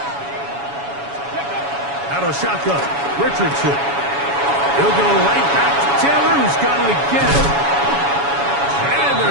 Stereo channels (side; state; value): left; late; 7.1 ms